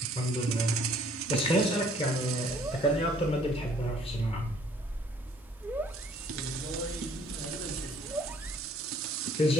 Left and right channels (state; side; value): normal; both; correlation 0.60